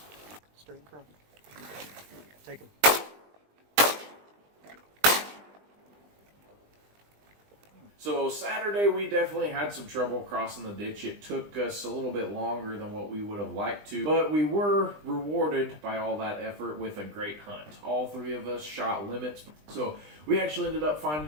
Straight in front. Take him. So Saturday we definitely had some trouble crossing the ditch. It took us a little bit longer than what we would have liked to, but we were rewarded by all that effort with a great hunt. All 3 of us shot limits, so we actually ended up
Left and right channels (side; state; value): left; late; 20 ms